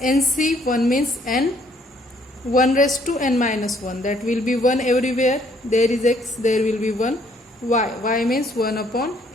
nc, 1 means n, 1 raised to n minus 1, that will be 1 everywhere, there is x, there will be 1, y means 1 upon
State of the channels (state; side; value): normal; both; correlation 0.65